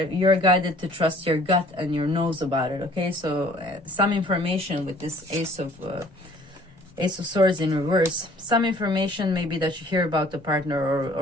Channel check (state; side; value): normal; both; correlation 0.55